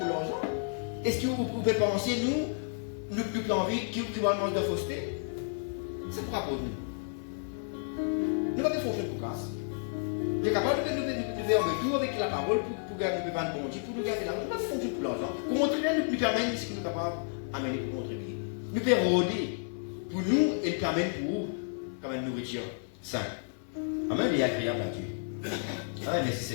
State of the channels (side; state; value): right; silent; digital silence